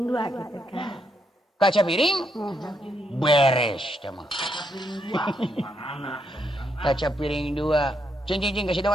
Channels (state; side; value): normal; both; correlation 0.78